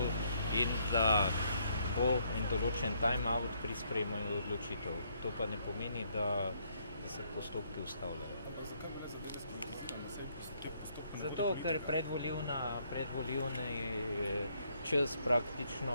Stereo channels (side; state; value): both; inverted; correlation -0.70